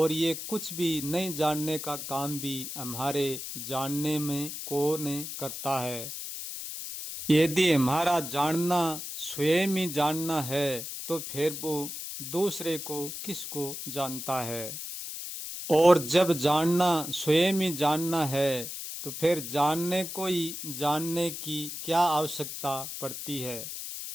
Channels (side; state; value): left; noise; hiss, 7 dB below the sound